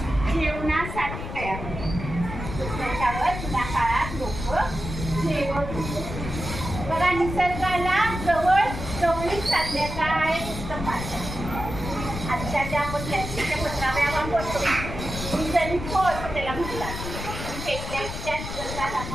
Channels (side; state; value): left; noise; rumble, 7 dB below the sound